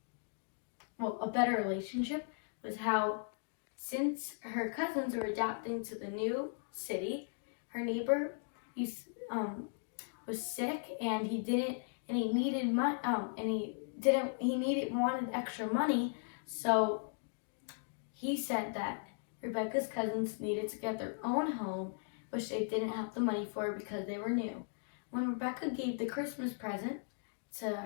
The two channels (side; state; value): right; silent; digital silence